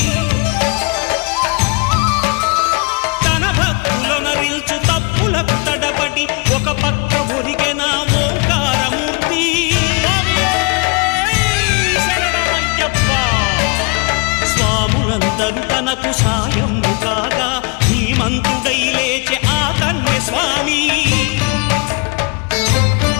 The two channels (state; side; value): quieter; right; 31.2 dB